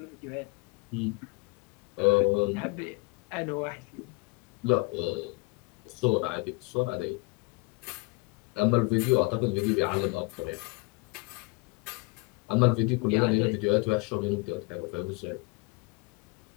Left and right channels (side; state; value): right; quieter; 27.3 dB